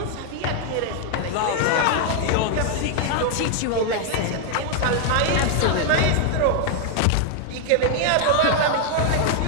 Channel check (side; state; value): both; different; correlation 0.00